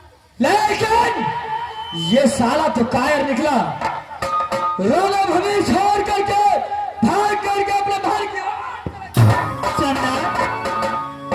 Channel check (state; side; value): identical; both; correlation 1.00